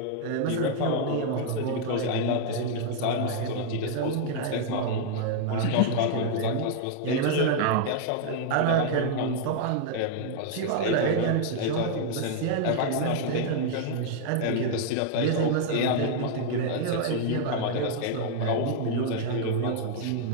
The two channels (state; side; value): different; both; correlation -0.01